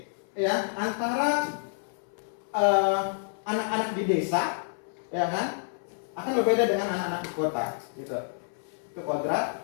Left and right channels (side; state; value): right; silent; 59 dB below the other